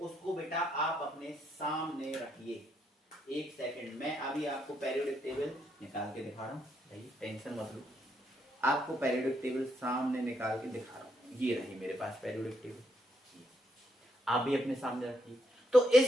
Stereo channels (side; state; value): both; normal; correlation 0.76